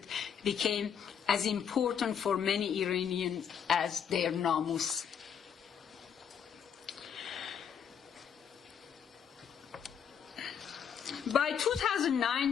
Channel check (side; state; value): right; quieter; 7.9 dB